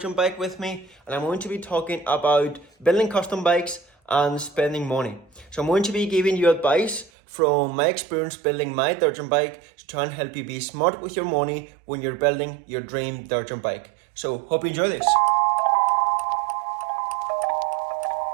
jump bike with me and I'm going to be talking about building custom bikes and spending money. So I'm going to be giving you advice from my experience building my dirt jump bike to try and help you be smart with your money when you're building your dream dirt jump bike. So hope you enjoy this.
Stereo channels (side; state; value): left; drops out; at 7.1 s